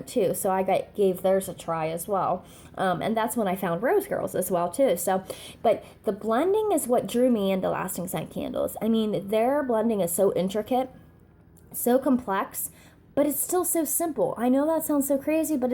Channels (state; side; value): identical; both; correlation 1.00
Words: too. So I gave theirs a try as well. And that's when I found Rose Girls as well too. So, but the blending is what drew me into lasting scent candles. I mean, their blending is so intricate, so complex, but it's still so simple. I know that sounds so crazy, but